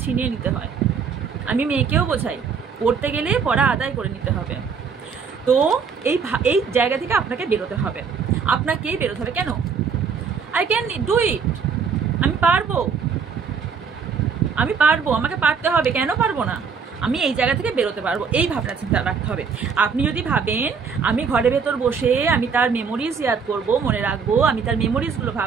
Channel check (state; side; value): quieter; left; 5.9 dB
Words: ছিনিয়ে নিতে হয়। আমি মেয়েকেও বোঝাই, পড়তে গেলে পড়া আদায় করে নিতে হবে। তো এই জায়গা থেকে আপনাকে বেরোতে হবে, আপনাকেই বেরোতে হবে। কেন? আই ক্যান ডু ইট, আমি পারবো, আমাকে পারতে হবে। কেন পারবো না? আমি এই জায়গা থেকে বেরোতে পারবো, এই ভাবনা চিন্তা রাখতে হবে। আপনি যদি ভাবেন আমি ঘরের ভেতর বসে আমি তার মেমোরিজ ইয়াদ করবো, মনে রাখবো, আমি তার মেমোরিজগুলো